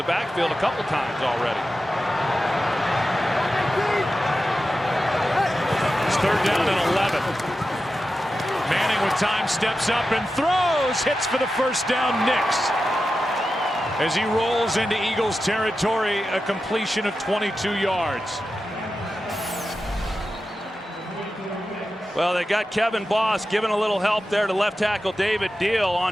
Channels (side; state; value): both; normal; correlation 0.92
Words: backfield a couple times already. It's 3rd down and 11. Manning with time steps up and throws, hits for the 1st down. Nix. As he rolls into Eagles territory, a completion of 22 yards. Well, they got Kevin Boss giving a little help there to left tackle David Deal